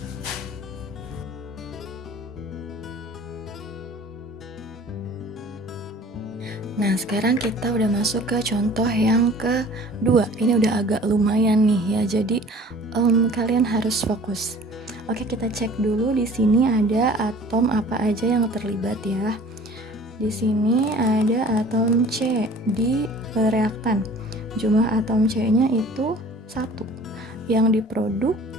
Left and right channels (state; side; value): normal; both; correlation 0.48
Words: Nah, sekarang kita udah masuk ke contoh yang kedua. Ini udah agak lumayan nih ya, jadi kalian harus fokus. Oke, kita cek dulu di sini ada atom apa aja yang terlibat ya. Di sini ada atom C di reaktan. Jumlah atom C-nya itu 1. Yang diproduk